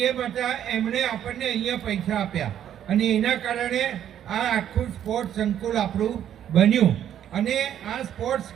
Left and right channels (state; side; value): quieter; left; 10.3 dB